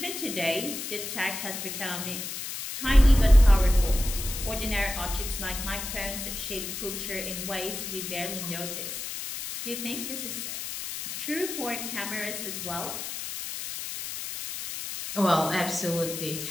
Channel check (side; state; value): left; noise; hiss, 6 dB below the sound